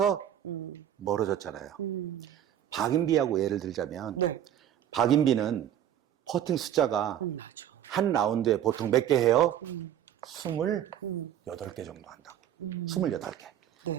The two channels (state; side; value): quieter; left; 10.6 dB